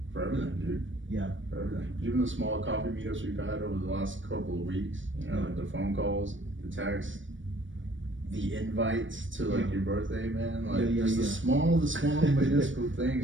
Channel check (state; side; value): late; left; 0.56 ms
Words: for everything, dude. Yeah. For everything. Even the small coffee meetups we've had over the last couple of weeks, like the phone calls, the texts, the invites to like your birthday, man. Like just the small minuscule